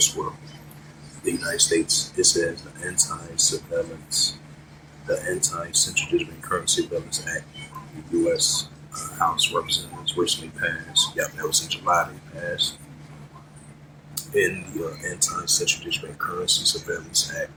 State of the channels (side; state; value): both; identical; correlation 1.00